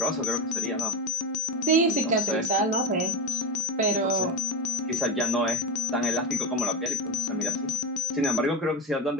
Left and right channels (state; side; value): normal; both; correlation 0.14